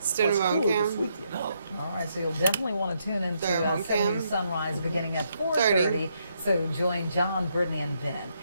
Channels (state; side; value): inverted; both; correlation -0.77